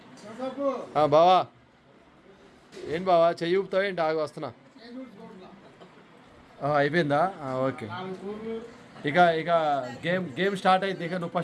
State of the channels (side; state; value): both; identical; correlation 1.00